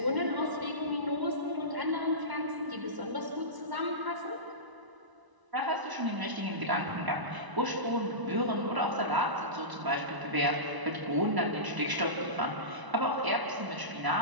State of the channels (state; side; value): late; left; 1.0 ms